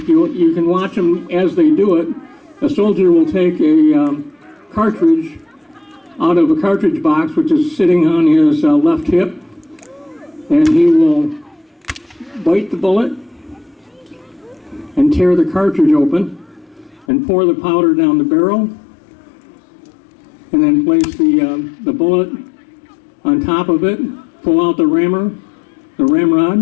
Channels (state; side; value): drops out; right; at 17.1 s